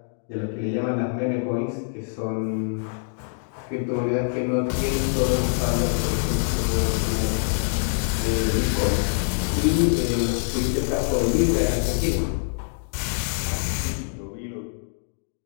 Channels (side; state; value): right; silent; digital silence